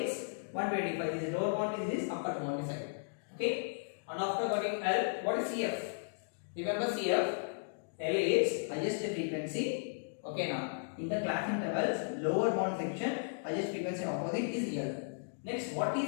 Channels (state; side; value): silent; right; digital silence